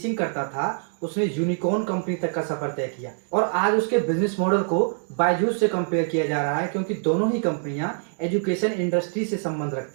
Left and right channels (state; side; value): silent; left; digital silence